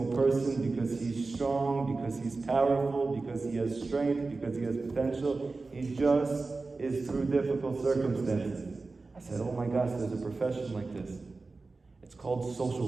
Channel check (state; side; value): quieter; left; 3.7 dB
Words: person because he's strong, because he's powerful, because he has strength, because he has potential. He just is through difficult circumstances. I said, oh my gosh, there's a profession like this. It's called